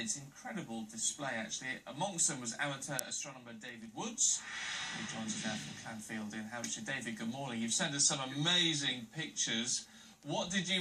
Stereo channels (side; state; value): both; identical; correlation 1.00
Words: Incredible display actually. Amongst them was amateur astronomer David Woods, who joins us now from Clanfield in Hampshire. David, good morning. You've sent us some amazing pictures. What did you